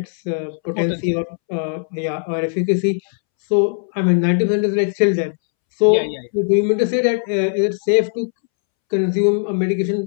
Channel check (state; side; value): silent; right; 67 dB below the other